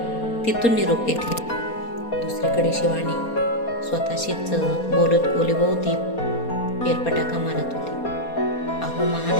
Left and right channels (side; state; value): right; late; 4.2 ms